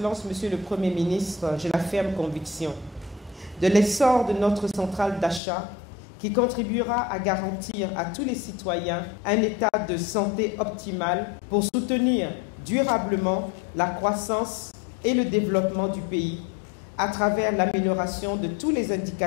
Monsieur le Premier ministre, j'ai la ferme conviction de l'essor de notre centrale d'achat qui contribuera à garantir à tous les citoyens un état de santé optimal pour soutenir durablement la croissance et le développement du pays à travers l'amélioration de tous les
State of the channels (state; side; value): drops out; right; at 5.4 s